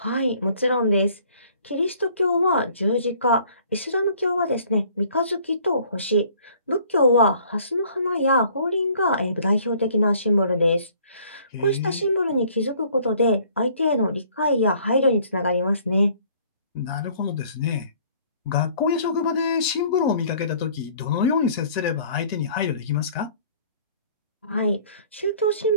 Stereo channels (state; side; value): inverted; both; correlation -0.57